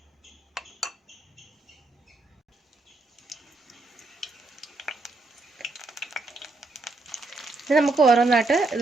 ഇത് നമുക്ക് ഓരോന്നായിട്ട്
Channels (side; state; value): left; quieter; 3.3 dB